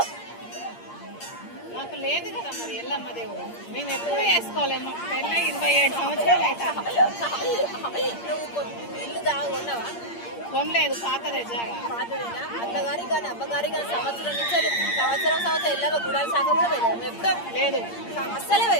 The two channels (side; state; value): right; late; 8.6 ms